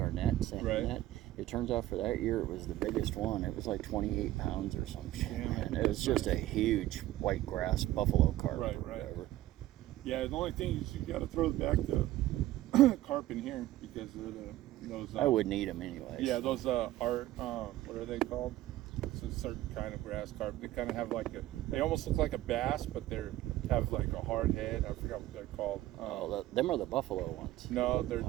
net, sand Right. net. It turns out for that year it was the biggest one. It was like 28 pounds or some shit. Damn it. Man. It was just a huge white grass buffalo carp. Right, or right. whatever. yeah, the only thing is you got to throw back the carp in here because they're those. I wouldn't eat them anyways. Yeah, those what are they called? It's a certain kind of grass carp. They kind of have like they almost look like a bass, but they have like a hard head. I forgot what they're called. Them are the buffalo ones. No, they're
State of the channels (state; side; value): quieter; left; 15.2 dB